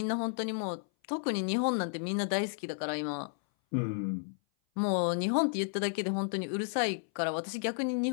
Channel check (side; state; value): right; silent; 56 dB below the other